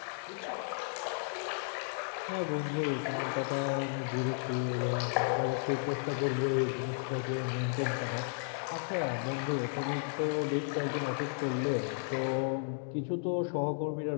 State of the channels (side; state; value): right; silent; digital silence